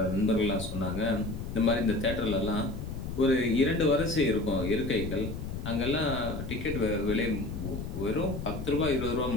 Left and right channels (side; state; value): left; noise; rumble, 6 dB below the sound